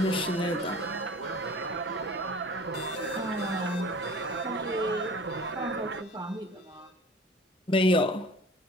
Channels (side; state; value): both; normal; correlation 0.43